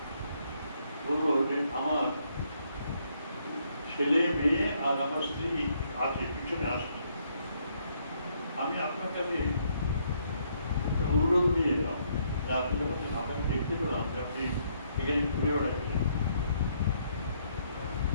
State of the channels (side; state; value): both; inverted; correlation -0.71